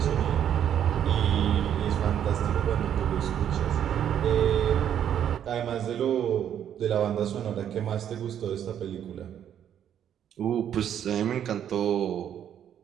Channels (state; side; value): quieter; left; 9.7 dB